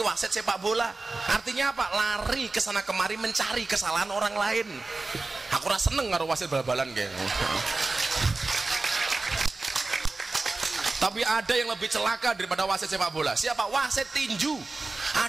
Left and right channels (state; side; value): quieter; left; 3.5 dB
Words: wasit sepak bola. Artinya apa? Lari ke sana kemari mencari kesalahan orang lain. Aku rasa seneng karo wasit bal-balan kayak. Tapi ada yang lebih celaka daripada wasit sepak bola. Siapa? Wasit tinju.